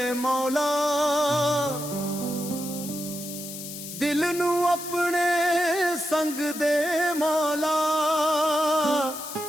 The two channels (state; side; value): noise; left; hiss, 10 dB below the sound